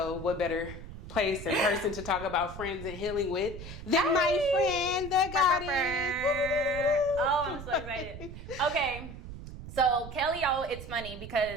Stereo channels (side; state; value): right; noise; rumble, 12 dB below the sound